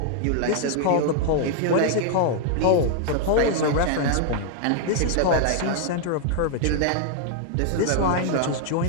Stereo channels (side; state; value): both; different; correlation 0.00